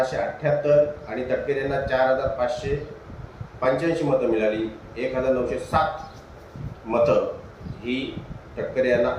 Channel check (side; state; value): both; identical; correlation 1.00